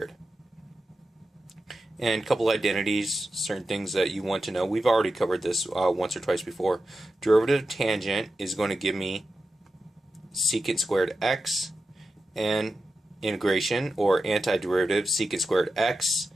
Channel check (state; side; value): normal; both; correlation 0.91